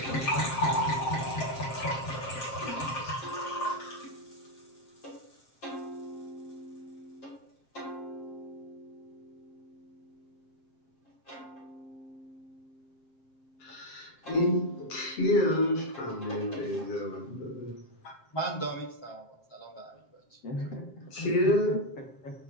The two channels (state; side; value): late; right; 7.6 ms